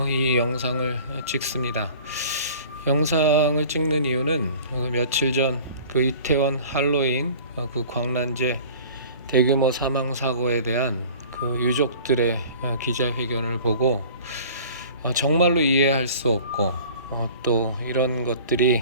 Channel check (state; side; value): inverted; both; correlation -0.45